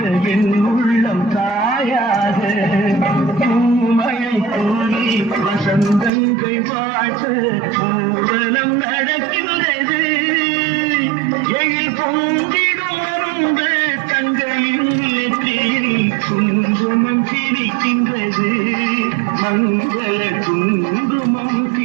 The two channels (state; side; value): drops out; left; at 6.1 s